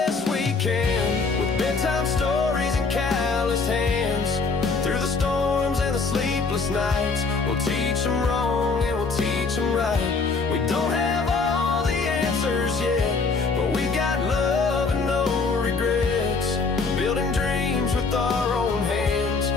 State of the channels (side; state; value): right; quieter; 4.3 dB